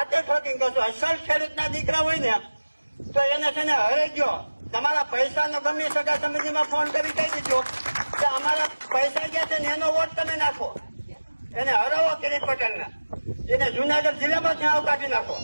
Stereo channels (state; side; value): inverted; both; correlation -1.00